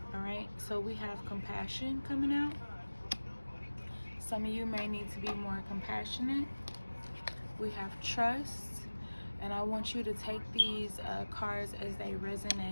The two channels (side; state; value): both; inverted; correlation -1.00